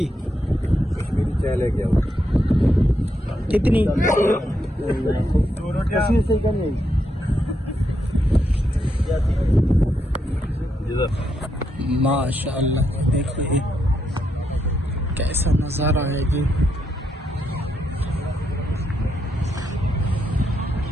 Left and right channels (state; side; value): normal; both; correlation 0.80